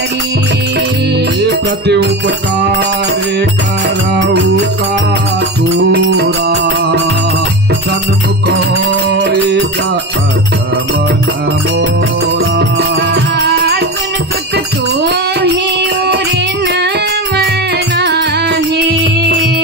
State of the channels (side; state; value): both; normal; correlation 0.22